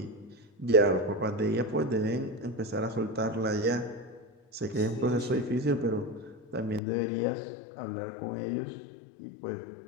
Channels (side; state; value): right; drops out; at 6.8 s